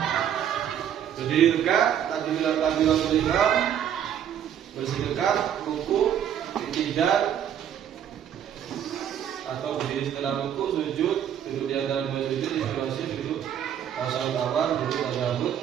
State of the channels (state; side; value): quieter; left; 9.6 dB